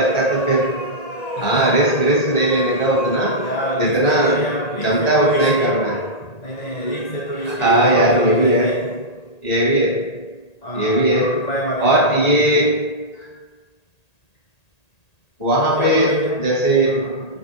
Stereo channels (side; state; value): right; late; 1.8 ms